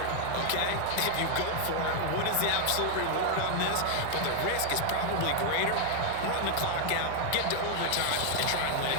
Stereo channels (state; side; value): different; both; correlation 0.00